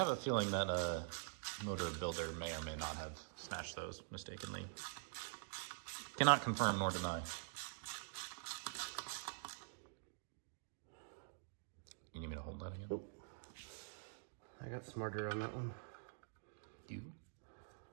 a feeling that a motor builder may or may not have smashed those mistakenly. Cannot confirm nor deny. You need me to hold that again? Nope. I got smarter on that one. You?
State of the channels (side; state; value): left; silent; digital silence